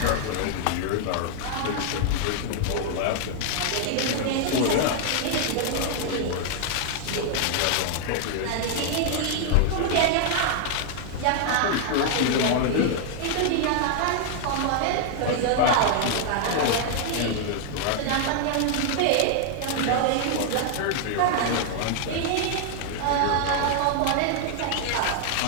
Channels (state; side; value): different; both; correlation 0.00